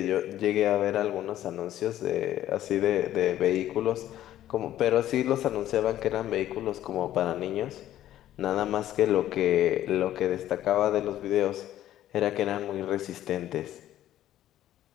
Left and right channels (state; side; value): quieter; right; 12.7 dB